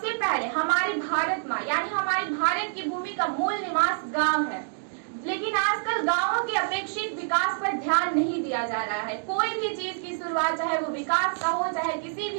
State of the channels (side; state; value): left; silent; digital silence